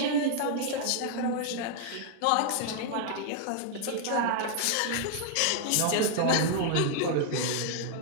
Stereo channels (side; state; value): both; different; correlation 0.00